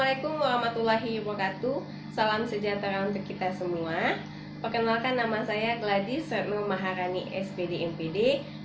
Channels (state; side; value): identical; both; correlation 1.00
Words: warahmatullahi wabarakatuh. Salam sejahtera untuk kita semua. Perkenalkan, nama saya Gladys Retno Maharani, SPD MPD.